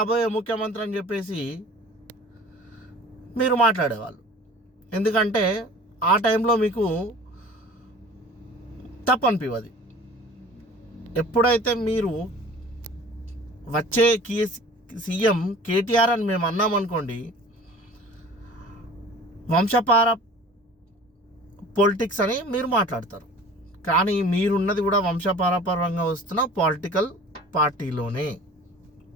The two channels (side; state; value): both; normal; correlation 0.44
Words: ముఖ్యమంత్రి అని చెప్పేసి మీరు మాట్లాడేవాళ్ళు. ఎందుకంటే ఆ టైంలో మీకు తప్పనిపివది. ఎప్పుడైతే మీరు వచ్చే సీఎం కేటీఆర్ అని మేము అన్నామనుకోండి, వంశపార పొలిటిక్స్ అని మీరు మాట్లాడతారు. కానీ మీరున్నది కూడా వంశపారపరంగా వస్తున్న పొలిటికల్ పార్టీలోనే.